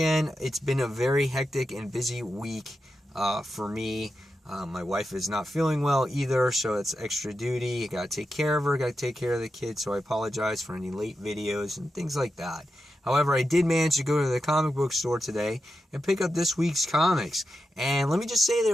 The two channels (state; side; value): normal; both; correlation 0.89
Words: It's been a very hectic and busy week for me. My wife is not feeling well either, so it's extra duty. I gotta take care of her, gotta take care of the kids, so I apologize for any late videos and things like that. However, I did manage to go to the comic book store today and pick up this week's comics. And let me just say